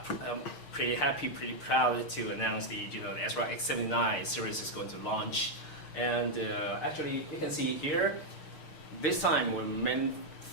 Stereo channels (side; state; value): right; late; 6.6 ms